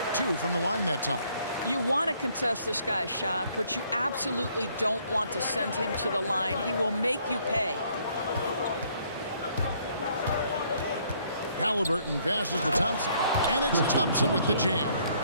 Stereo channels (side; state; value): both; inverted; correlation -0.65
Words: 2 from the line that time. You want to contest this guy's shot, but you absolutely don't want to send him to the line. He will make you pay. Halliburton passes to Thompson, and it's Thompson with the jam.